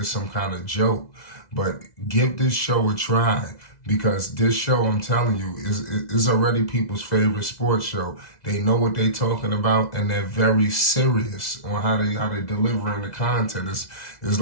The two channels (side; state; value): right; late; 2.0 ms